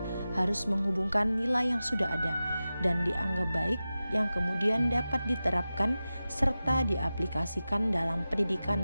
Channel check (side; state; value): both; inverted; correlation -0.95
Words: harus menghubungkan nilai yang sudah ada dan dianggap baik yang kemudian dapat diterapkan serta diaplikasikan dalam